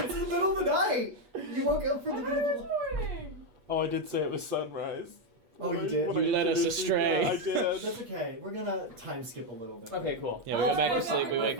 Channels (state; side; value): late; left; 8.4 ms